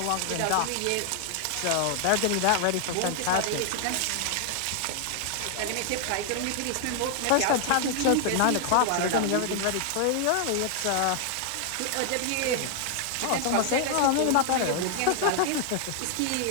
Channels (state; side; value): different; both; correlation 0.00